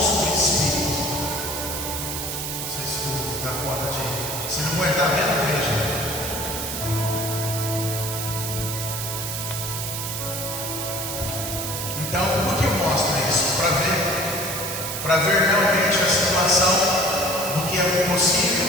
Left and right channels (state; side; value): noise; right; hiss, 4 dB below the sound